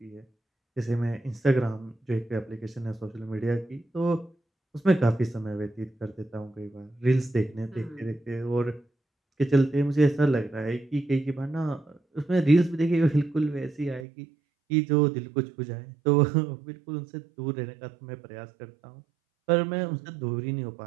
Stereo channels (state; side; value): drops out; left; at 14.1 s